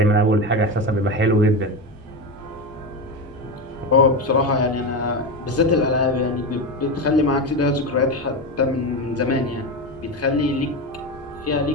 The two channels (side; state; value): both; normal; correlation 0.17